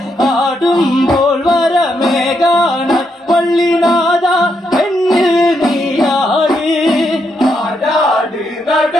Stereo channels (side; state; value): both; normal; correlation 0.79